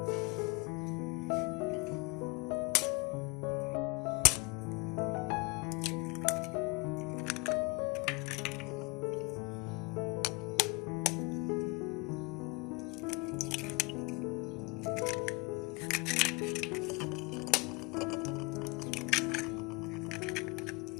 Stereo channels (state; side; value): quieter; right; 27.1 dB